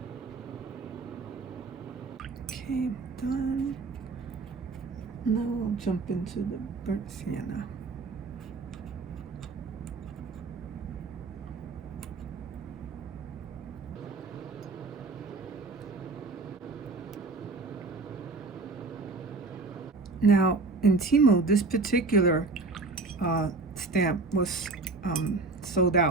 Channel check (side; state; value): left; quieter; 3.8 dB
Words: Okay, done. Now I'll jump into the burnt sienna. Now in Temu, this particular stamp was sold